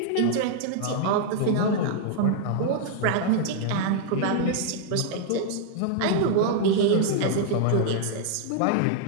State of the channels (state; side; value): different; both; correlation -0.01